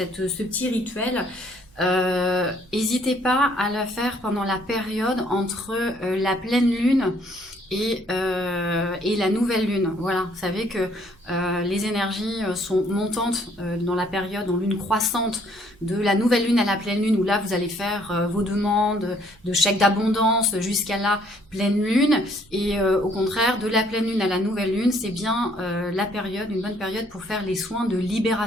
petit rituel, n'hésitez pas à la faire pendant la période entre la pleine lune et la nouvelle lune. Voilà, vous savez que les énergies sont montantes dans la période en lune croissante de la nouvelle lune à la pleine lune, où là vous allez faire vos demandes de chèques d'abondance jusqu'à la pleine lune. Et au contraire, de la pleine lune à la nouvelle lune, c'est bien la période, une bonne période pour faire les soins de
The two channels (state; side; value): noise; right; hum, 29 dB below the sound